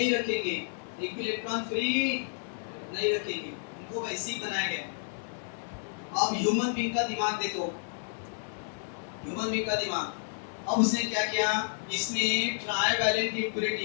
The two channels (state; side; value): silent; right; 57 dB below the other